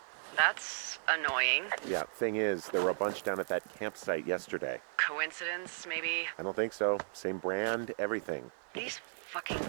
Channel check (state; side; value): silent; left; digital silence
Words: That's annoying. Yeah, thing is, there were a bunch down at that campsite yesterday. Coincidence, maybe? I don't think so. Same brand, everything. These fucking